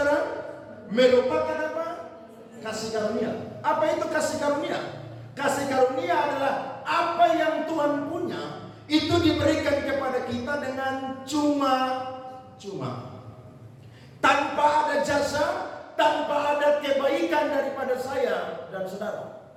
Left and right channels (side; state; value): both; identical; correlation 1.00